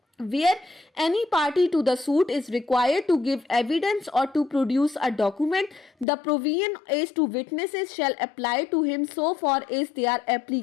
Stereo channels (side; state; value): right; drops out; at 6.1 s